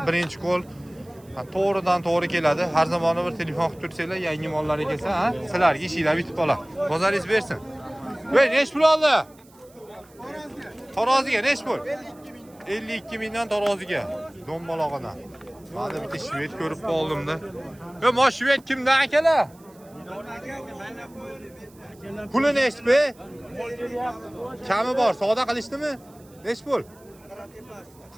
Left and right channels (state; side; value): noise; right; hiss, 28 dB below the sound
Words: birinchi qo'l to'g'ridan to'g'ri keladi. Har zamon bir telefon qilib tursanglar, yangi mollarga kelsa, ha, sizlarga ishinglar bitib qoladi. Bozoringiz bersin. Voy, nech pul oldi? Taroziga nech pul? 52 mingdan taroziga. Do'mbalog'idan. Mana bitta shved ko'rib qoldim-da. Mo shved kimdan akalar? Puli nech be? Kami bor, savdo qilishdimi? Nech pul?